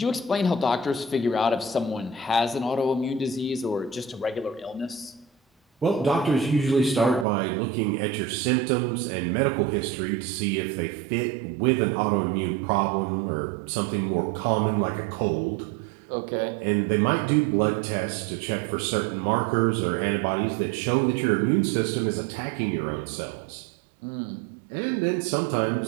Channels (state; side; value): drops out; left; at 7.2 s